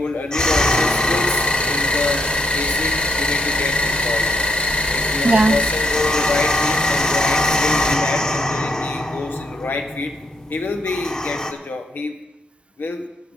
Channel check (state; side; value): normal; both; correlation 0.75